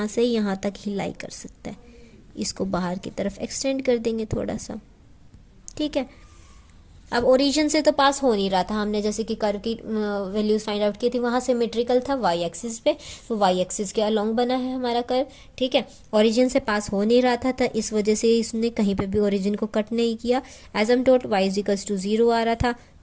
से यहाँ तक ही लाई कर सकता है। इसको बाहर की तरफ एक्सटेंड कर देंगे थोड़ा सा। ठीक है, अब ओरिजिन से तो पास हो नहीं रहा था, हमने जैसे कि कर्व की वैल्यूज फाइंड आउट की थी, वहाँ सिमेट्रिकल था y एक्सिस पे, तो y एक्सिस के अलोंग बना है हमारा कर्व। ठीक है, ओरिजिन से पास हो नहीं रहा था इस वजह से इसने कहीं पे भी ओरिजिन को कट नहीं किया। एजम्प्टोट y = 0 आ रहा था।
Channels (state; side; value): identical; both; correlation 1.00